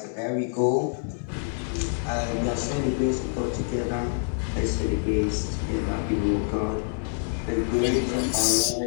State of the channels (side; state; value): right; silent; digital silence